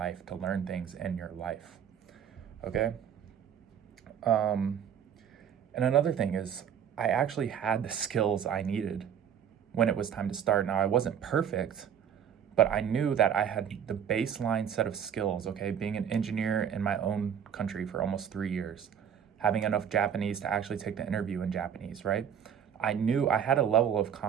to learn things in your life. Okay. And another thing is I actually had the skills I needed when it was time to start. Now, I wasn't perfect, but I knew that I had the baseline set of skills, okay? Being an engineer in my own country for almost 3 years, having enough Japanese to actually take the interview in Japanese, right? I knew I had a level of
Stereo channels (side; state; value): left; quieter; 8.5 dB